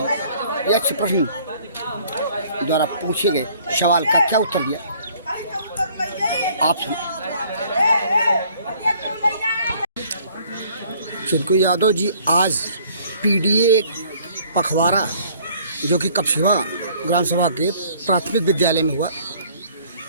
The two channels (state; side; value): inverted; both; correlation -0.57